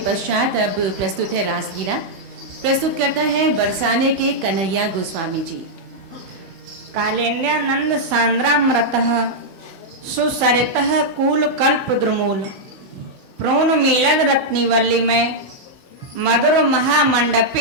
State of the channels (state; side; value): late; left; 16 ms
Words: पश्चात अब प्रस्तुत है रासलीला। प्रस्तुत करता है बरसाने के कन्हैया गोस्वामी जी। कालेन्द्यानंद सांद्रामृतः सुसरितः कूल कल्प द्रुमूल प्रोन मीलद रत्निवल्ली में मधुर